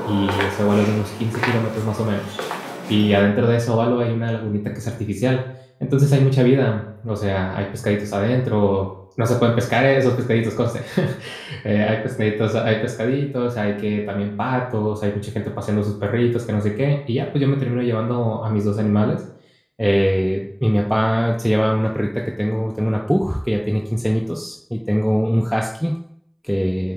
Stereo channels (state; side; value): identical; both; correlation 1.00